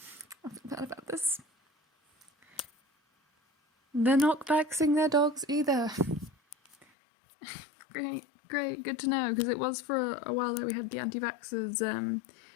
I forgot about this. They're not vaxxing their dogs either. Great, good to know, because it was for a while there we had the anti-vaxxers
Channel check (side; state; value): right; drops out; at 6.9 s